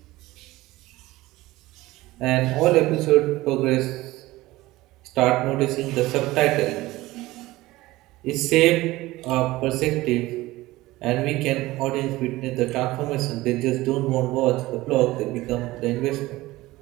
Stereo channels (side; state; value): left; quieter; 18.5 dB